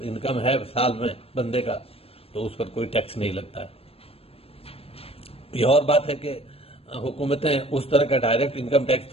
انکم ہے سال میں بندے کا تو اس پر کوئی ٹیکس نہیں لگتا ہے۔ یہ اور بات ہے کہ حکومتیں اس طرح کا ڈائریکٹ انکم ٹیکس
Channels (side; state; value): right; late; 0.28 ms